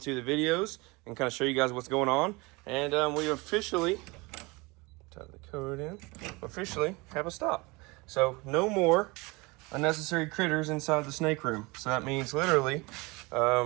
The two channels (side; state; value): left; quieter; 25.1 dB